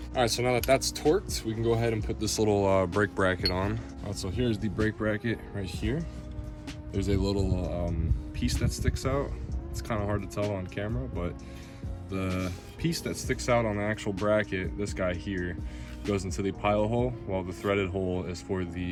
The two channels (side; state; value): both; identical; correlation 1.00